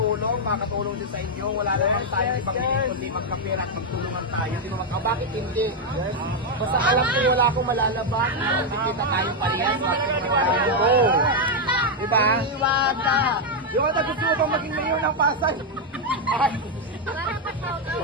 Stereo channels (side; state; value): both; normal; correlation 0.01